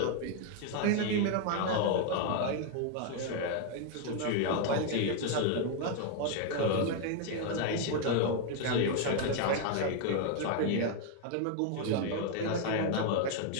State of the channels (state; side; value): different; both; correlation 0.01